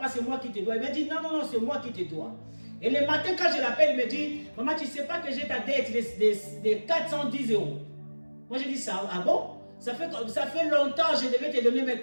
c'est moi qui te dois. Il m'a dit, non, c'est moi qui te dois. Et le matin, quand je l'appelle, il me dit, Maman, tu ne sais pas que j'ai ta dette de 410 €. Moi, j'ai dit, ça, ah bon? Ça fait longtemps que je devais te donner, mais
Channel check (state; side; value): inverted; both; correlation -1.00